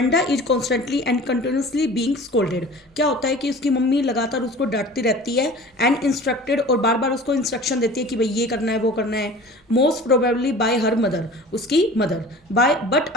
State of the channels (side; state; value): both; normal; correlation 0.42